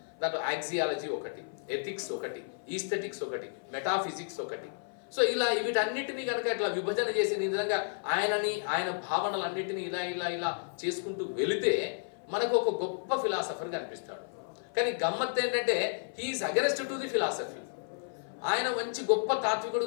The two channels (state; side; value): silent; right; 56 dB below the other